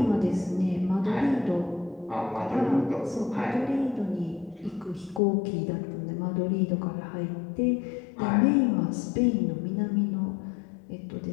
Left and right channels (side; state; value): right; drops out; at 5.2 s